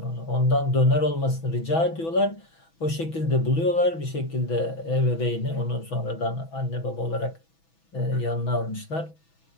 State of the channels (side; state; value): right; late; 6.1 ms